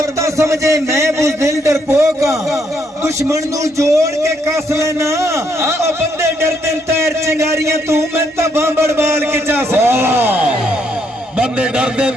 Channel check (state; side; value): normal; both; correlation 0.73